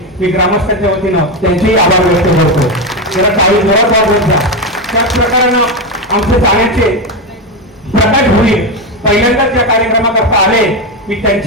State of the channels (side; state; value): both; normal; correlation 0.12